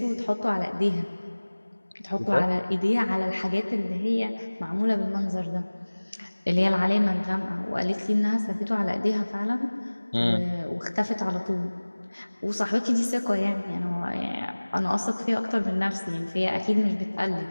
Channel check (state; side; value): inverted; both; correlation -1.00